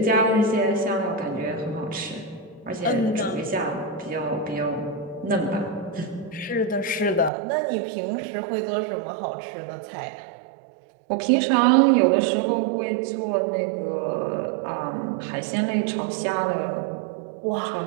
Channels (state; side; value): drops out; left; at 7.3 s